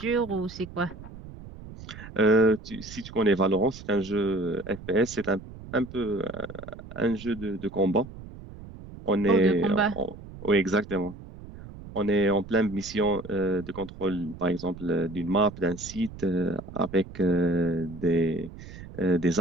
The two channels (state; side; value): noise; right; rumble, 15 dB below the sound